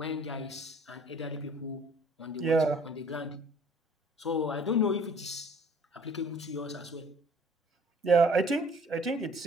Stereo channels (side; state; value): both; normal; correlation 0.54